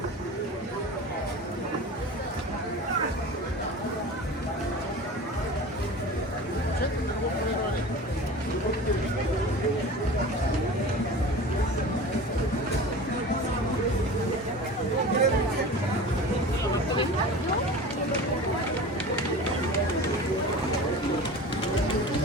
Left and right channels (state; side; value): normal; both; correlation 0.35